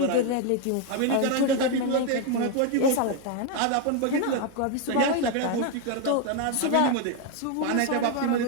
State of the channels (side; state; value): both; different; correlation 0.01